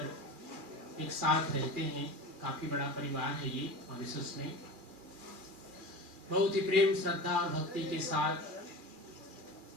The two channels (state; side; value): late; left; 2.4 ms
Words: एक साथ रहते हैं, काफ़ी बड़ा परिवार है ये मॉरिशस में, बहुत ही प्रेम श्रद्धा और भक्ति के साथ